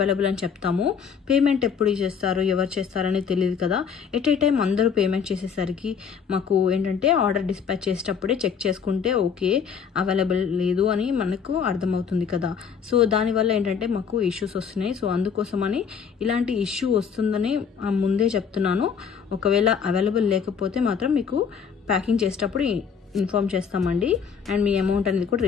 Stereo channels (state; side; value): quieter; right; 6.8 dB